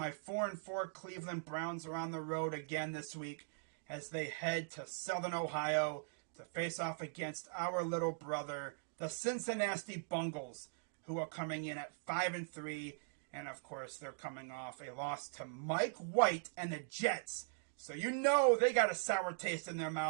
4-4 Cleveland Browns are on the road again this week as they head to Southern Ohio to face off against our little brother, the Cincinnati Bengals, who are coming in at 5-3, and of course they're coming off a loss to Mike White and the Jets. So you know they got a sour taste in their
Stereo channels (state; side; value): silent; left; digital silence